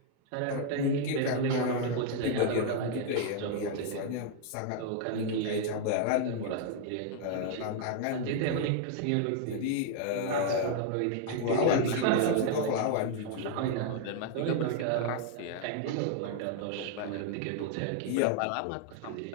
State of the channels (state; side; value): different; both; correlation 0.00